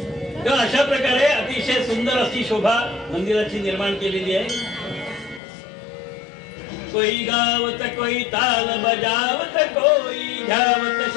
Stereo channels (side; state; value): right; drops out; at 5.4 s